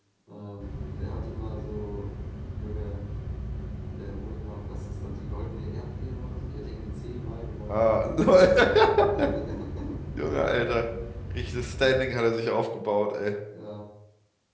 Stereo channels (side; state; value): both; identical; correlation 1.00